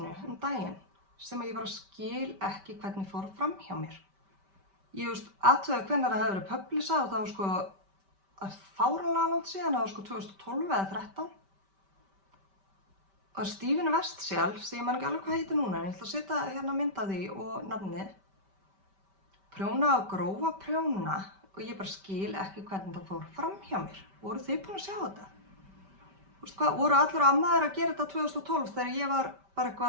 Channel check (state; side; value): late; left; 5.1 ms